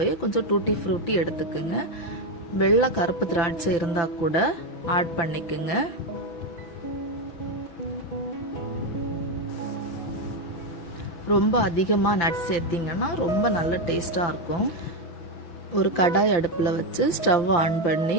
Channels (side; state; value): right; late; 5.9 ms